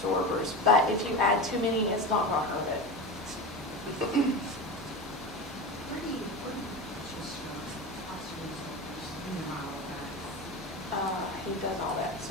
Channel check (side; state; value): both; normal; correlation 0.25